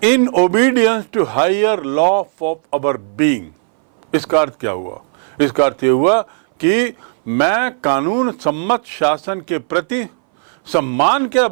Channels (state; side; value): silent; left; 62 dB below the other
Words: in obedience to higher law of our being. इसका अर्थ क्या हुआ, इसका अर्थ यह हुआ कि मैं कानून सम्मत शासन के प्रति सम्मान के